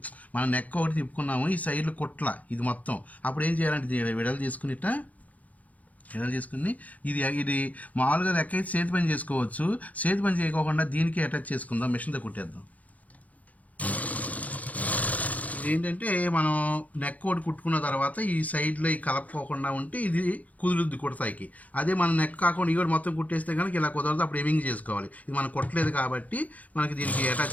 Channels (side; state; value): right; late; 0.073 ms